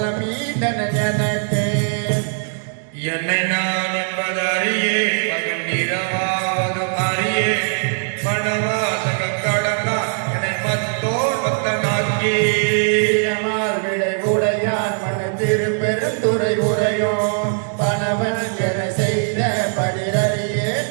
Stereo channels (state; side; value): silent; left; 60 dB below the other